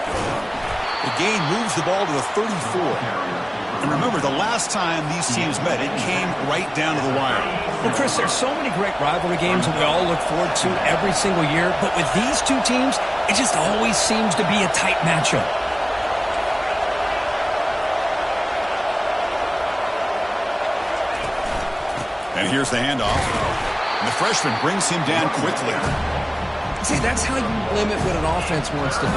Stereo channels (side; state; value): both; identical; correlation 1.00